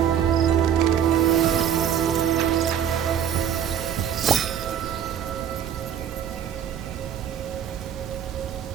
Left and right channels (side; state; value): left; quieter; 9.3 dB